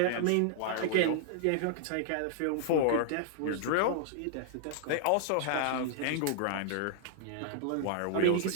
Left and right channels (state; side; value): different; both; correlation 0.00